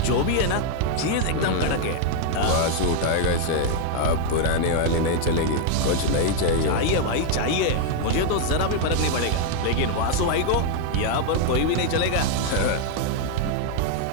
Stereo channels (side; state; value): both; different; correlation 0.00